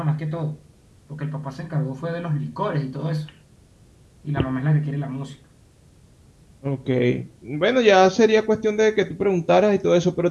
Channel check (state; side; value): identical; both; correlation 1.00